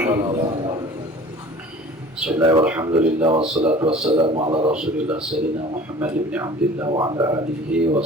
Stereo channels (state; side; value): normal; both; correlation 0.45